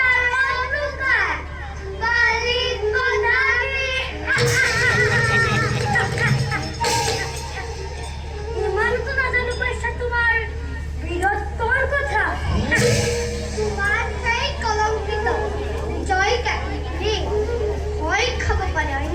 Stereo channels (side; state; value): both; identical; correlation 1.00